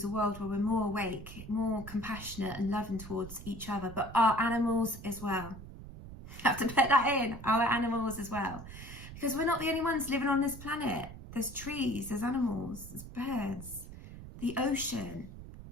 a world where we're more awake, more compassionate and loving towards each other, but our animals as well. I have to put that in, our animals as well. Because we're not the only ones living on this planet. There's trees, there's animals, there's birds, the ocean.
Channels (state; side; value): noise; right; rumble, 13 dB below the sound